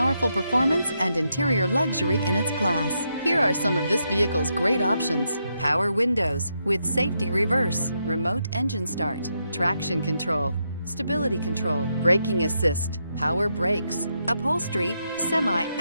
performance and interior luxury in its class. Here are some of this vehicle's great options: power windows with safety reverse, remote engine start, traction control, stability control, braking assist, power brakes, upholstery,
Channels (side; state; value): both; inverted; correlation -0.81